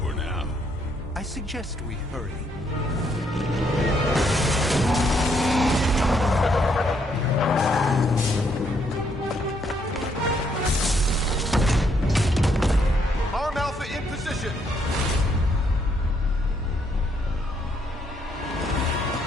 now. I suggest we hurry. Arm Alpha in position.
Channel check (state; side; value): normal; both; correlation 0.72